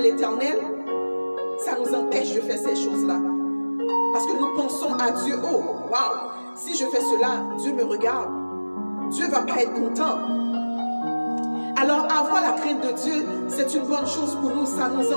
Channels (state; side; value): inverted; both; correlation -1.00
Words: ça nous empêche de faire ces choses-là. Parce que nous pensons à Dieu, oh, waouh, si je fais cela, Dieu me regarde. Dieu ne va pas être content. Alors, avoir la crainte de Dieu, c'est une bonne chose pour nous. Ça nous